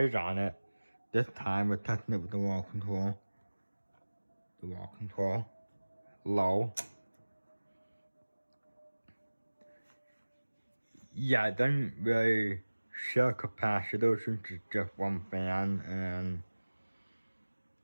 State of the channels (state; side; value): inverted; both; correlation -1.00